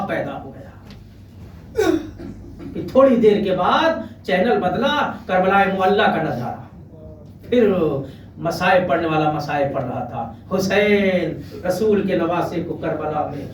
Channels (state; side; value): identical; both; correlation 1.00